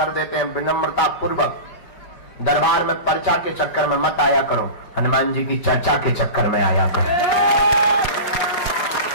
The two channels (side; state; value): right; late; 5.2 ms